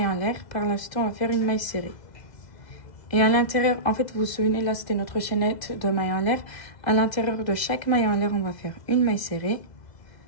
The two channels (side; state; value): right; late; 2.0 ms